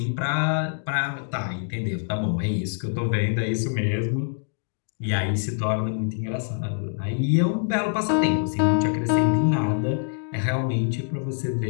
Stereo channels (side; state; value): right; silent; 62 dB below the other